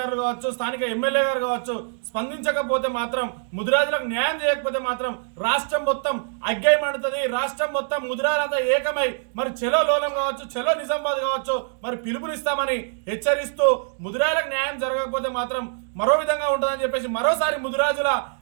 కావచ్చు, స్థానిక ఎమ్మెల్యే గారు కావచ్చు స్పందించకపోతే మాత్రం, ముదిరాజులకు న్యాయం చేయకపోతే మాత్రం రాష్ట్రం మొత్తం అగ్గై మండుతుంది. రాష్ట్రం మొత్తం ముదిరాజులంతా ఏకమై మరి చెలో లోలం కావచ్చు, చెలో నిజామాబాద్ కావచ్చు మరి పిలుపునిస్తామని హెచ్చరిస్తూ, ముదిరాజులకు న్యాయం జరగకపోతే మాత్రం మరో విధంగా ఉంటుందని చెప్పేసి మరోసారి ముదిరాజుల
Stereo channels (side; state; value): left; silent; digital silence